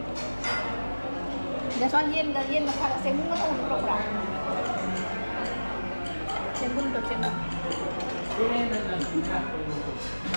Giờ xoan yên mà phải là xem nó không được đâu. Xem cũng được xem nào.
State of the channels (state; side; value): inverted; both; correlation -1.00